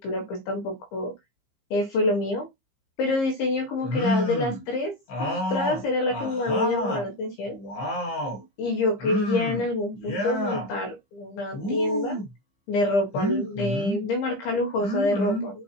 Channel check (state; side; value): late; right; 15 ms